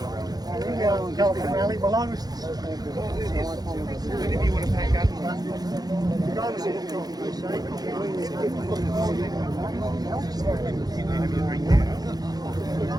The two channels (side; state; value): left; late; 0.19 ms